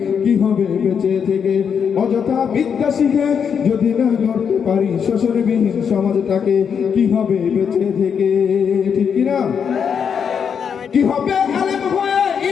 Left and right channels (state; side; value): quieter; right; 7.1 dB